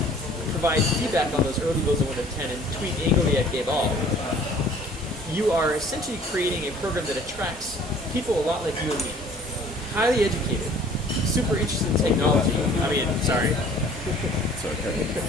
provide feedback on those early builds of Windows 10, and tweet angrily at Gabe All, you are essentially creating a program that attracts people a lot like you and me. Highly educated, super interested in technology. Highly educated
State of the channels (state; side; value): normal; both; correlation 0.52